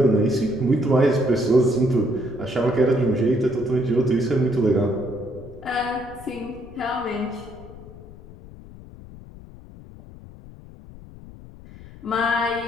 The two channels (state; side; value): noise; left; rumble, 18 dB below the sound